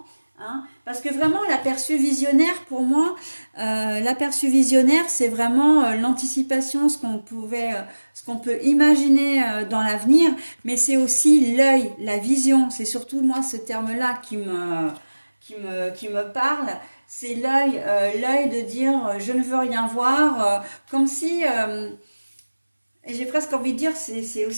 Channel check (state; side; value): inverted; both; correlation -1.00